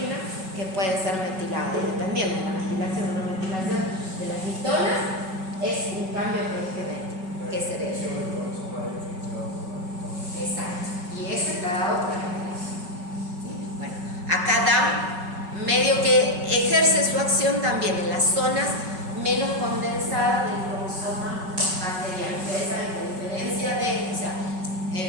que pueden ser metiladas, dependiendo de la metilación o no metilación de las histonas. Es un cambio genético que se debe. Exacto. Y eso está dado por la metilación. ¿Sí? Bueno, acá DAM medio que ejerce su protección también en las zonas menos condensadas del cromosoma bacteriano. Ustedes saben que a diferencia de, o sea,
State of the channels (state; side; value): late; left; 5.3 ms